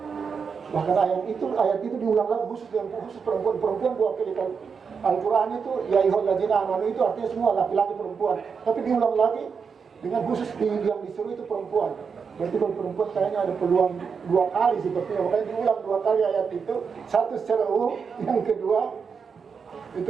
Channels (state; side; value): quieter; left; 5.9 dB